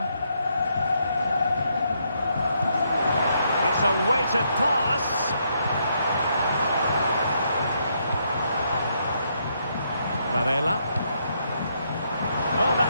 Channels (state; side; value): inverted; both; correlation -0.75